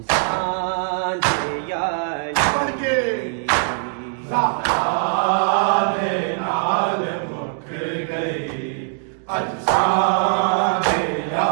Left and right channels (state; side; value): silent; left; 60 dB below the other